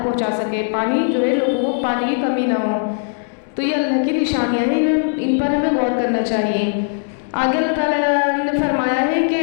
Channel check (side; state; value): right; silent; digital silence